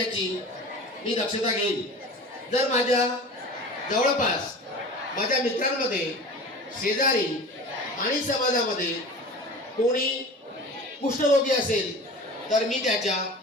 मी दक्षता घेईन। जर माझ्या जवळपास माझ्या मित्रांमध्ये, शेजारी आणि समाजामध्ये कोणी कुष्ठरोगी असेल तर मी त्याच्या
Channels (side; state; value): both; normal; correlation 0.37